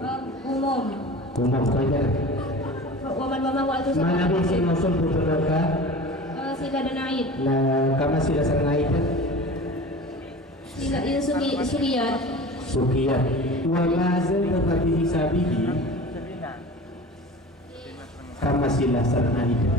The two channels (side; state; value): both; normal; correlation 0.37